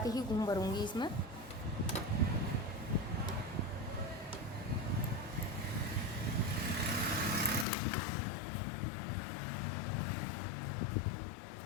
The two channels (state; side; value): drops out; right; at 7.7 s